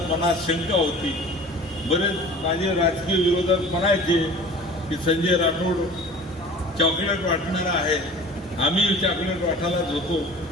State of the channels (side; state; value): both; normal; correlation 0.42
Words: मनात शंका होती. बरेच माझे राजकीय विरोधक म्हणायचे की संजय राठोड चॉकलेट वाटणारा आहे, आम्ही चॉकलेट वाटायलाच होतो,